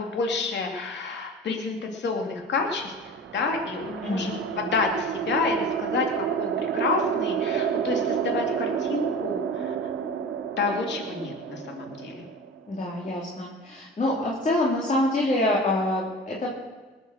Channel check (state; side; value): normal; both; correlation 0.34